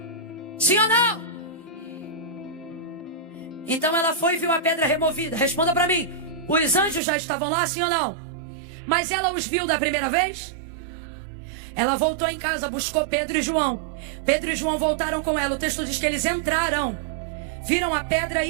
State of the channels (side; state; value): left; drops out; at 7.0 s